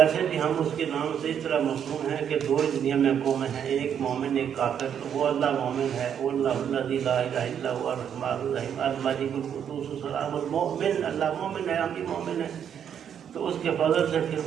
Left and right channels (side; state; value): left; quieter; 8.6 dB